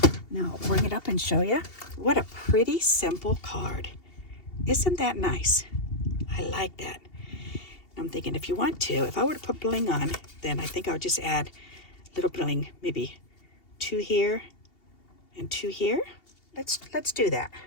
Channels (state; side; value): late; right; 2.8 ms